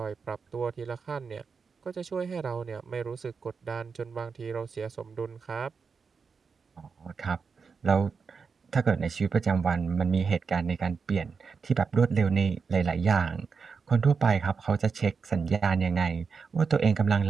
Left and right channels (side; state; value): left; quieter; 5.4 dB